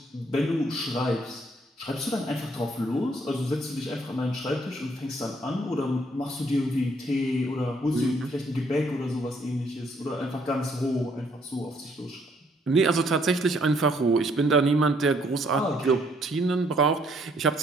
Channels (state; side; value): normal; both; correlation 0.67